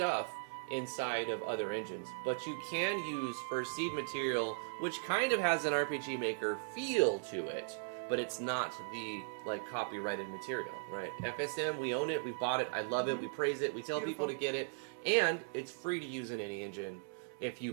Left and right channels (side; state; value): left; silent; 52 dB below the other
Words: inside of other engines, but you can use First Seed material, which kind of has an RPG Maker feel to it, but it's not the copyrighted material, right? FSM, we own it, we bought it, I love it, we praise it, we tell people to get it, and it's free to use in any engine. If